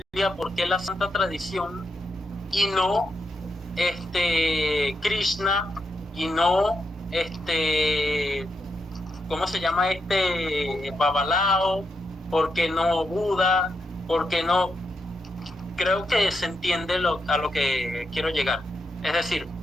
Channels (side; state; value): both; normal; correlation 0.83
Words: ¿Por qué la Santa Tradición? Y no Krishna, y no ¿cómo se llama Babalao? ¿Por qué no Buda? ¿Por qué no? Creo que se entiende a lo que quiero llegar. Es decir,